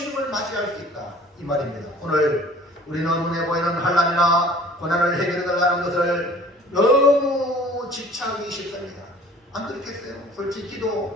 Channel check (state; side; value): normal; both; correlation 0.50